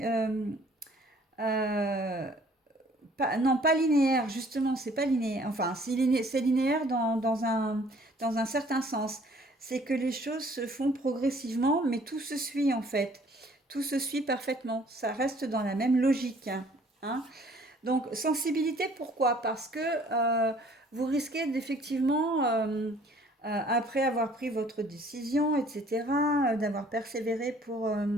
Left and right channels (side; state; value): both; normal; correlation 0.57